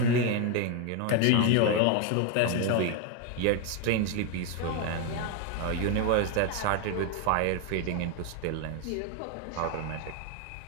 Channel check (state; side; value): different; both; correlation 0.01